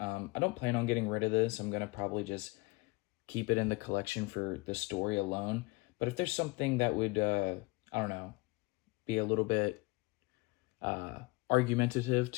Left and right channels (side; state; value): right; quieter; 24.6 dB